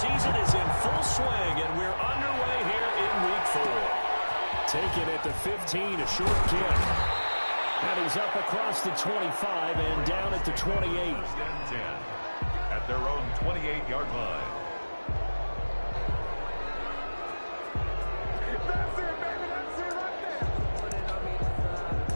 is in full swing, and we're underway here in Week 4. Taken at the 15, a short kick. And he's up across the 25 and down at the 28. At their own 28-yard line. That's it, baby. That's it right there.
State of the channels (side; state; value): both; inverted; correlation -1.00